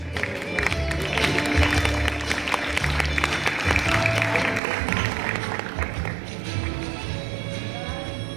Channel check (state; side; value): drops out; left; at 4.6 s